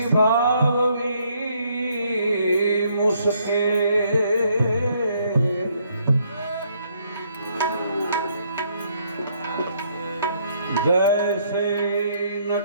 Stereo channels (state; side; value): inverted; both; correlation -0.69